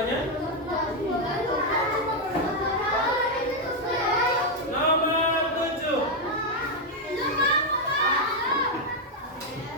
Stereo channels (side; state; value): both; normal; correlation 0.02